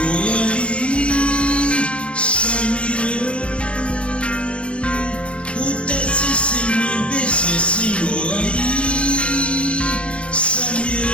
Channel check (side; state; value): right; late; 0.060 ms